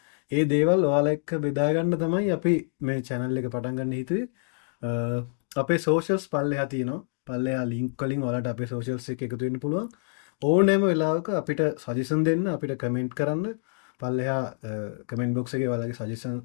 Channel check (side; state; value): right; silent; digital silence